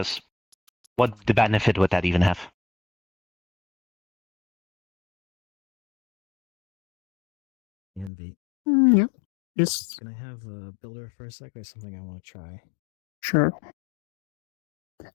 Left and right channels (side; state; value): right; drops out; at 8.1 s